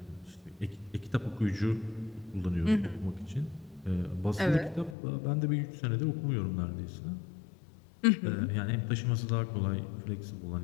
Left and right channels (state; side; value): drops out; right; at 5.0 s